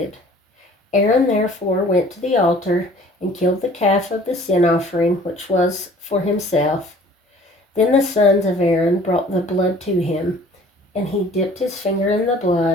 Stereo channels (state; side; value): normal; both; correlation 0.51